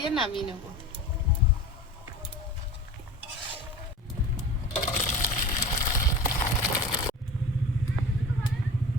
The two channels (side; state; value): both; normal; correlation 0.35